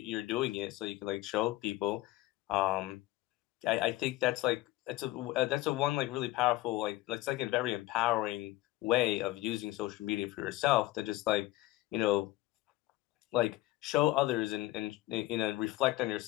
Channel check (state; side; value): quieter; right; 17.8 dB